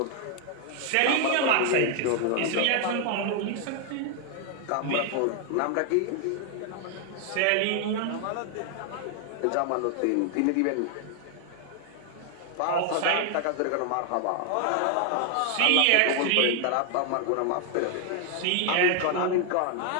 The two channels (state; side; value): different; both; correlation 0.00